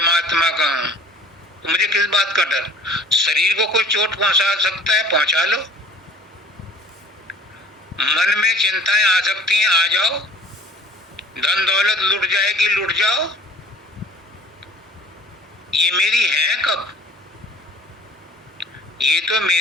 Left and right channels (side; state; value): both; normal; correlation 0.50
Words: का हूं, तो मुझे किस बात का डर? शरीर को कोई चोट पहुंचा सकता है, पहुंचा लो। मन में चिंताएं आ सकती हैं, आ जाओ। धन दौलत लुट जाएगी, लुट जाओ। ये मेरी है कब? ये तो